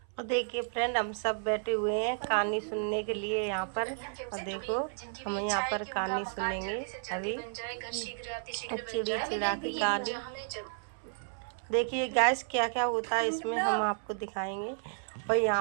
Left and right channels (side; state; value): left; silent; 56 dB below the other